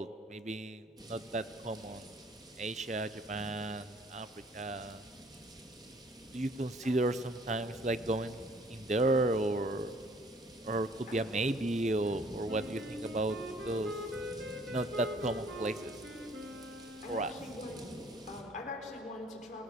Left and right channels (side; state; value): both; normal; correlation 0.58